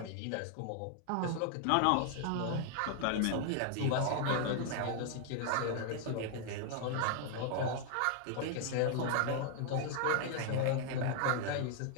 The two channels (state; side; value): different; both; correlation 0.00